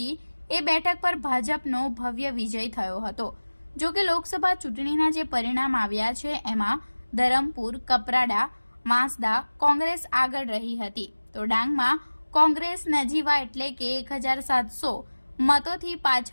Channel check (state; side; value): inverted; both; correlation -1.00